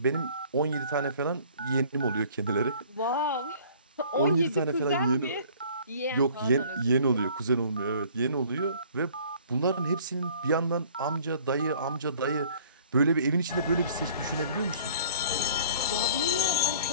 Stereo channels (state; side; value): inverted; both; correlation -0.52